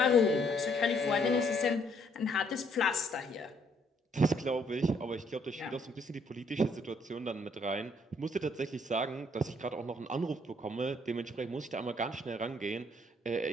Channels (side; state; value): both; normal; correlation 0.67